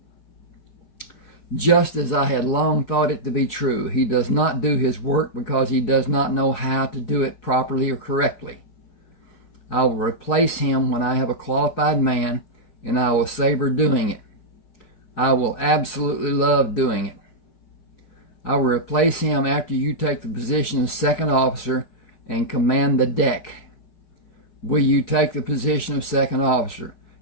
Just as I had long thought it to be true, he does not do his work because he does not know how to do it properly or correctly. I will replace him when I have a qualified man, and I will savor doing it. I will absolutely love doing it. I will replace him after you take the position of second officer and command the deck. Will you take the position of second officer?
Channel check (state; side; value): late; right; 4.7 ms